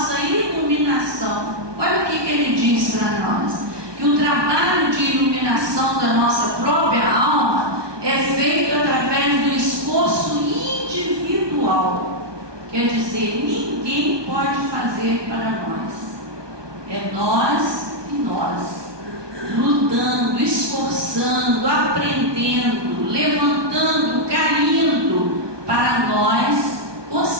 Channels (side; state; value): left; late; 1.2 ms